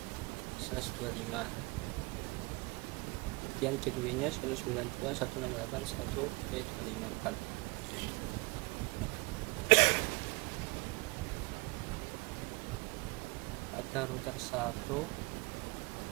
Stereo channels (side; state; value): left; quieter; 27.2 dB